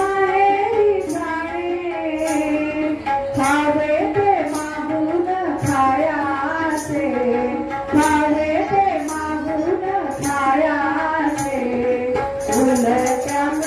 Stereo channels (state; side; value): identical; both; correlation 1.00